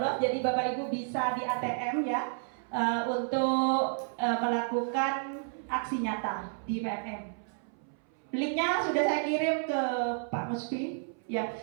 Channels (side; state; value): left; silent; 57 dB below the other